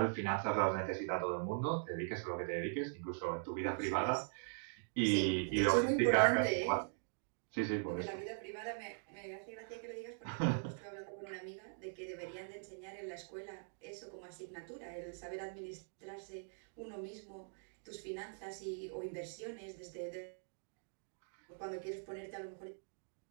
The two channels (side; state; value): left; silent; digital silence